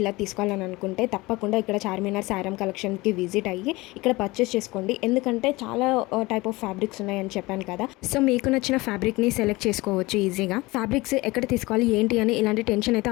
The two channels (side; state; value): right; quieter; 21.8 dB